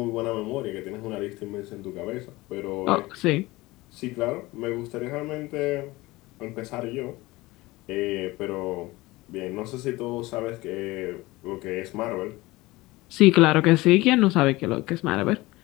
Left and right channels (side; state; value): right; quieter; 20.5 dB